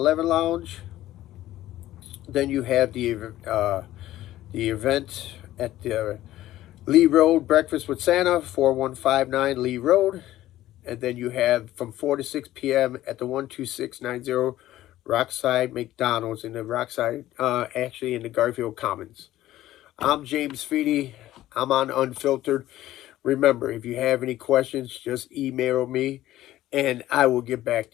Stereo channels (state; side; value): quieter; right; 14.5 dB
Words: Lounge. Then you have the event at the Lee Road Breakfast with Santa, 4159 Lee Road. And then you have from 4 to 6 p.m. at the 12690 Rockside McDonald's in the Rockside, actually in the Garfield Commons. I'm James Feeney. I'm on Unfiltered. Remember, if you have any questions, just email me and I will get back